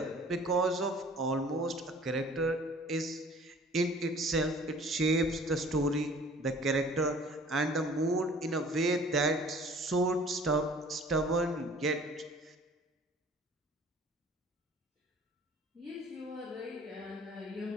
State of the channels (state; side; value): normal; both; correlation 0.50